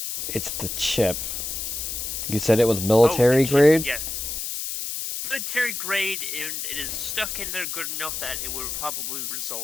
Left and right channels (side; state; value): left; noise; hiss, 4 dB below the sound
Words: It's the chip. You said it was military grade? Yes. Military grade, and it is stuck in there good enough that it would probably